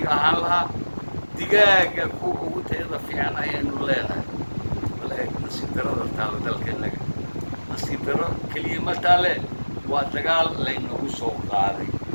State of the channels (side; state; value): both; inverted; correlation -1.00